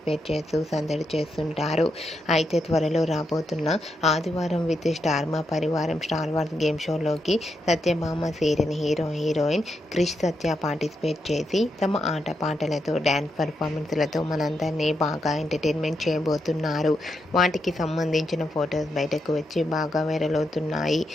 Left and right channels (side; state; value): both; normal; correlation 0.83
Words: చేస్తూ సందడి చేస్తుంటారు. అయితే త్వరలో రాబోతున్న ఆదివారం విత్ స్టార్ మా పరివారం స్టార్ వార్స్ గేమ్ షోలోకి Satyabhama serial heroine Krish Satya participate చేసి తమ ఆట పాటలతో, డ్యాన్స్ పర్ఫార్మెన్స్లతో మనందరినీ బాగా ఎంటర్టైన్మెంట్ చేయబోతున్నారు. వాటికి సంబంధించిన ఫొటోస్ బయటకు వచ్చి బాగా వైరల్ అవుతున్నాయి.